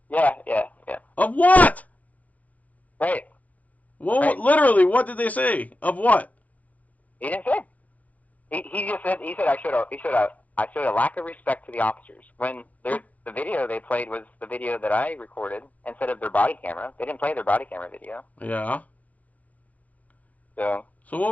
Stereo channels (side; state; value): right; late; 0.075 ms